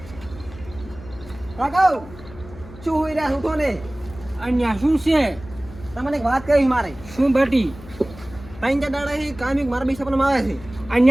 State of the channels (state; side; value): noise; left; hum, 17 dB below the sound